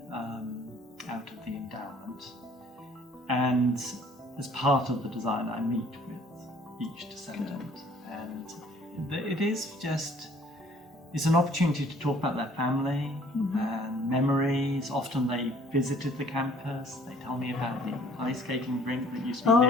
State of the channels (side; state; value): both; normal; correlation 0.56